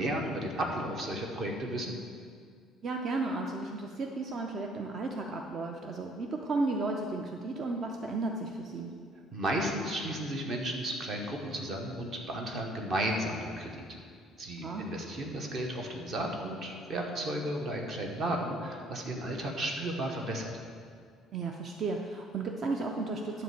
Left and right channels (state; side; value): normal; both; correlation 0.60